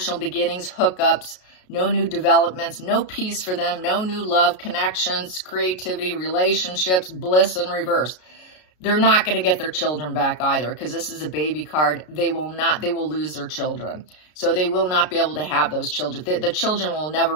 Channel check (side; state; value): right; late; 33 ms